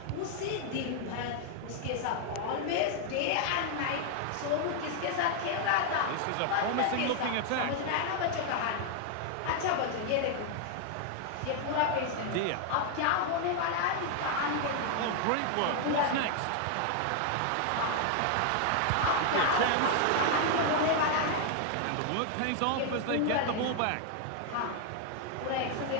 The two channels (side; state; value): both; different; correlation 0.00